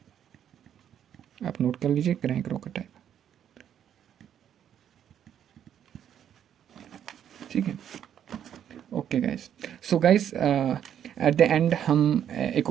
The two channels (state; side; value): quieter; left; 9.6 dB